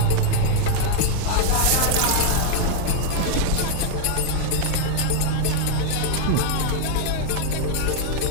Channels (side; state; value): both; different; correlation 0.00